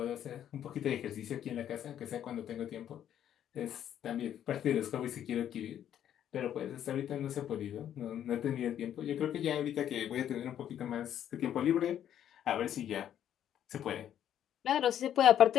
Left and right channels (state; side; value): quieter; right; 10.4 dB